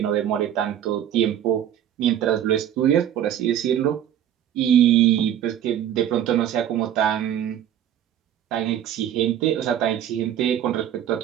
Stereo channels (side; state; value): left; quieter; 10.6 dB